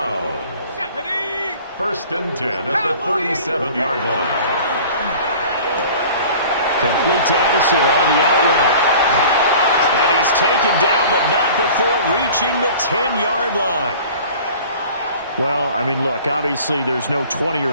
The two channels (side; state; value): both; inverted; correlation -0.44